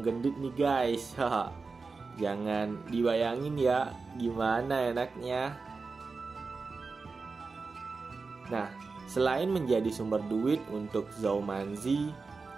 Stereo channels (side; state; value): left; quieter; 4.3 dB